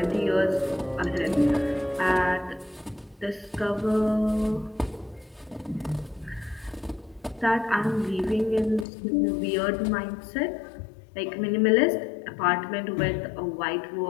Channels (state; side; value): drops out; right; at 8.8 s